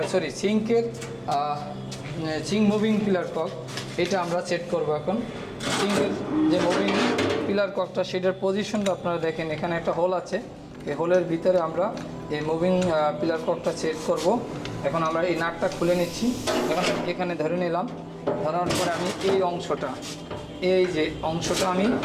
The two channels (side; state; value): both; identical; correlation 1.00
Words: সিঙ্কের সিঙ্ক মুভিং পিলার কক, এটা আমরা সেট করব। এখন সিঙ্কের যে মুভিং পিলার ককটা, সেটার পজিশনটা আপনারা দেখেন, এখানে একটা হোল আছে। এই হোলের ভিতরে আমরা এই মুভিং পিলার ককটা সেট করব। এখন আমরা এই নাটটা খুলে নিচ্ছি। এখন এখানে ধরে নিলাম। ধরার পরে আমি এই অংশটা, এই যে অংশটা আমি